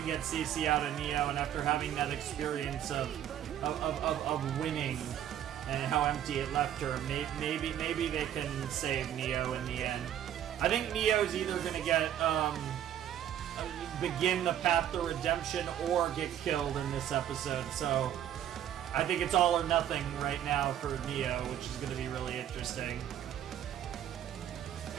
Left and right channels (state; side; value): quieter; left; 10.7 dB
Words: get CC out of Neo, and after having that experience of winning and how empty it left her, maybe they can save Neo in the end. I think Neo's either gonna get begin the path to redemption or get killed in this episode, so I think it's all or nothing right now for Neo, which is going to be really interesting.